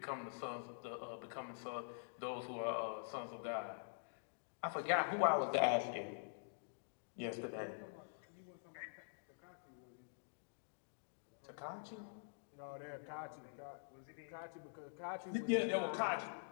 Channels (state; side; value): silent; right; digital silence